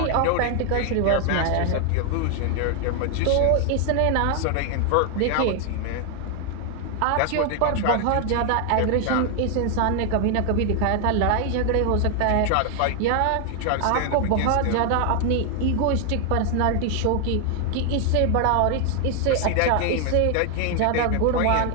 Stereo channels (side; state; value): both; different; correlation 0.00